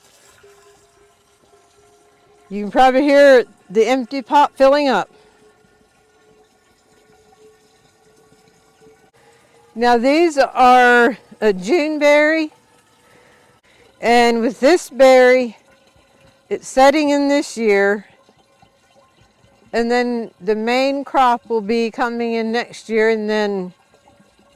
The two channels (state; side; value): identical; both; correlation 1.00